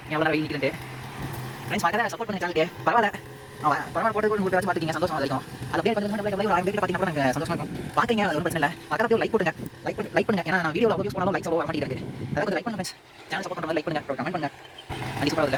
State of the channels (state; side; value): identical; both; correlation 1.00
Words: எவ்வளோ வெயில் நிற்கிறது ஃப்ரெண்ட்ஸ். மறக்காத சப்போர்ட் பண்ணி சேனலுக்கு பரவாயில்ல பரவாயில்ல போட்டு கூட வச்சு பார்த்துக்கிங்க சந்தோஷம் இருக்கும். அது அப்படியே கொஞ்சம் பார்த்தீங்கன்னா நாங்கள் சந்தோஷமாக இருக்கும். பார்த்துங்க அது ஒன்றும் பிரச்சனை இல்லை. பக்கத்தில் லைக் போட்டுங்க லைக் பண்ணுங்க. ஏன்னா நான் வீடியோவில் யூஸ் பண்ணாலும் லைக்ஸ் வர மாட்டேங்குது. அதாவது கொஞ்சம் லைக் பண்ணுங்க ஃப்ரெண்ட்ஸ். சேனல் சப்போர்ட் பண்ணுங்க லைக் பண்ணுங்க கமெண்ட் பண்ணுங்க. அது